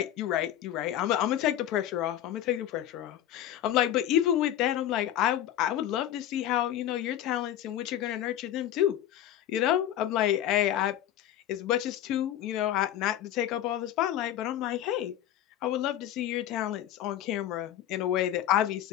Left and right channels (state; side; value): quieter; right; 11.7 dB